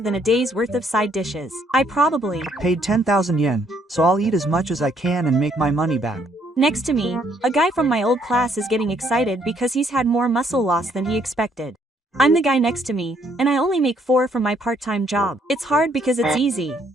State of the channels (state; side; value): normal; both; correlation 0.68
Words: than a day's worth of side dishes. I probably paid 10,000 yen, so I'll eat as much as I can and make my money back. Next to me, a guy from my old class is getting excited because he's had more muscle loss than he expected. I'm the guy next to me, and I only make 4 from my part-time job. It's hard because it's easy.